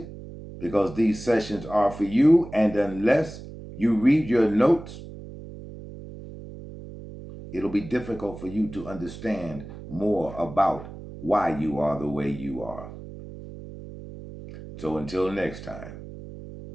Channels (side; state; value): right; noise; hum, 13 dB below the sound